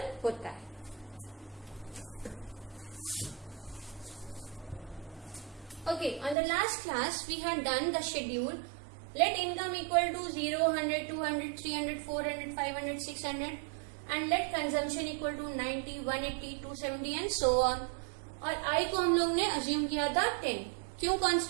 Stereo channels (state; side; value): drops out; left; at 6.4 s